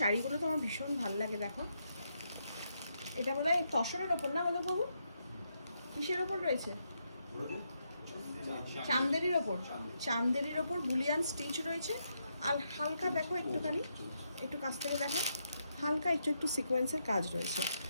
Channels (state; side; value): inverted; both; correlation -0.80